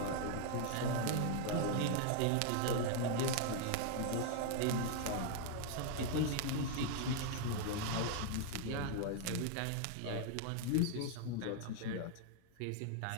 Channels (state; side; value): different; both; correlation 0.00